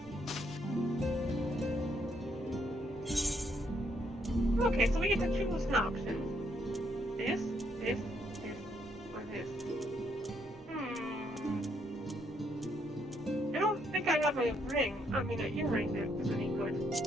Okay, so we get to choose an option. This, or this. I don't think I have a ring. I mean, an earring that is any good.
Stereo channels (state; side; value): normal; both; correlation 0.73